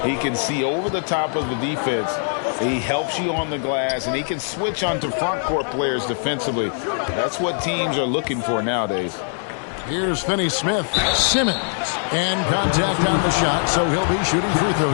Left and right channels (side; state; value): right; silent; 64 dB below the other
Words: He can see over the top of the defense. He helps you on the glass, and he can switch onto front court players defensively. That's what teams are looking for nowadays. Here's Finney Smith. Simmons. And contact on the shot, so he'll be shooting free